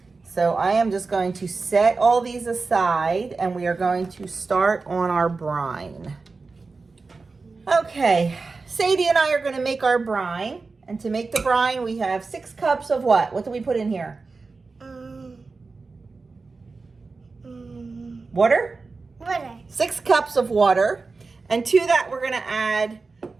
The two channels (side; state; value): left; quieter; 4.1 dB